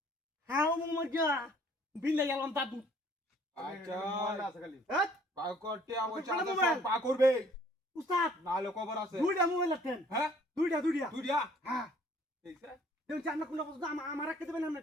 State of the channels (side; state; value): both; normal; correlation 0.58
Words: হাও মজা বিলে গেলাম দাদু আচ্ছা মোবাইল আছে খালি বা কর টিয়া বুঝা কোন আছে মোবাইল? সব বা করবে উস্তাদ নালে খবর আছে দুইটা মোবাইল আছেন হ্যাঁ দুইটা তুই দিয়া হ্যাঁ এইসে দেন জানা কোন বস্তু আমার রাখতে দেবেন আমরা